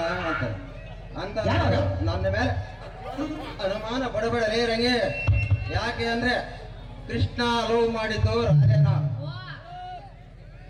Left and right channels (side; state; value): both; identical; correlation 1.00